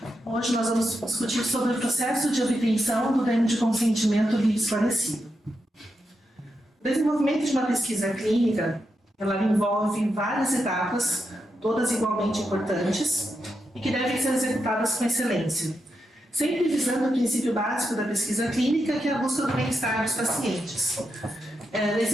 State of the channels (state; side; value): normal; both; correlation 0.86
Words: hoje nós vamos discutir sobre o processo de obtenção do termo de consentimento livre esclarecido. O desenvolvimento de uma pesquisa clínica, ela envolve várias etapas, todas igualmente importantes, e que devem ser executadas com excelência, sempre visando o princípio básico da pesquisa clínica, que é a busca do bem-estar dos pacientes.